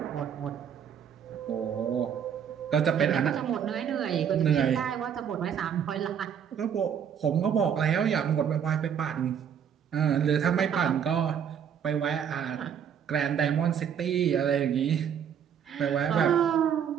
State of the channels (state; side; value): quieter; left; 8.3 dB